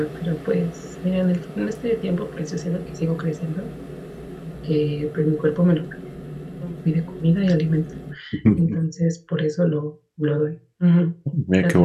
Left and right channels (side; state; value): both; identical; correlation 1.00